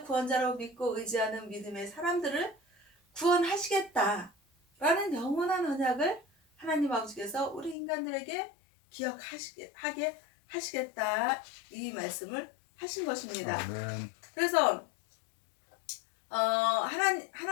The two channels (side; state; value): right; drops out; at 7.8 s